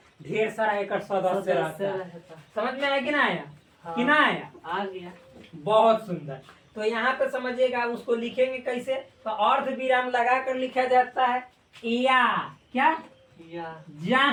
ढेर सारा एक सदस्य रहता है। समझ में आया कि ना आया। हाँ। कि ना आया, आ गया। बहुत सुंदर। तो यहाँ पे समझिएगा, उसको लिखेंगे कैसे, तो अर्ध विराम लगा कर लिखा जाता है या, क्या या,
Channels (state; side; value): identical; both; correlation 1.00